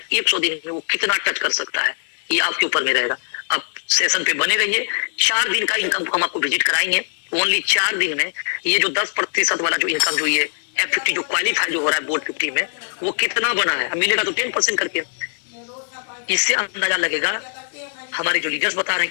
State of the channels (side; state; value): right; silent; digital silence